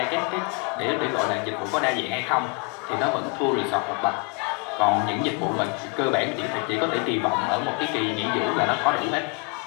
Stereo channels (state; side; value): quieter; right; 30.7 dB